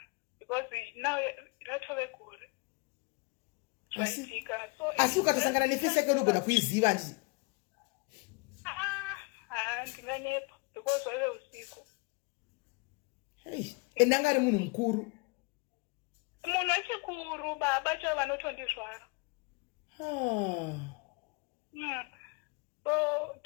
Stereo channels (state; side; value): quieter; right; 29.5 dB